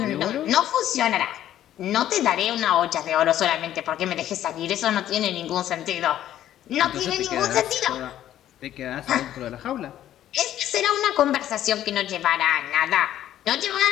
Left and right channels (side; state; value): right; quieter; 12.1 dB